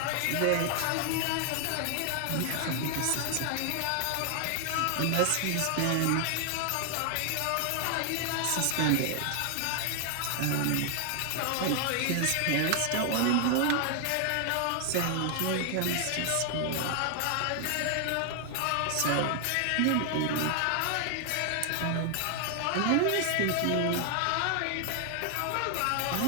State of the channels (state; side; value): different; both; correlation 0.00